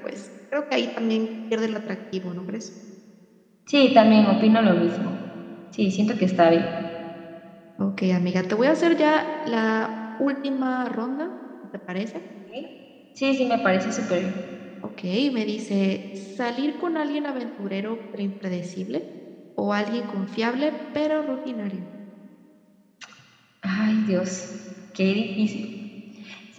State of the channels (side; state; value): both; identical; correlation 1.00